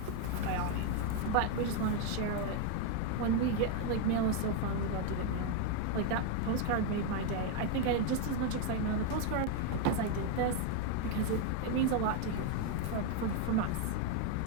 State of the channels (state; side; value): different; both; correlation 0.01